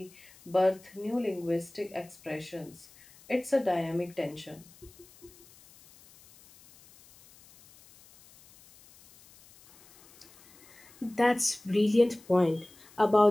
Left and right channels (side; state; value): left; noise; hiss, 25 dB below the sound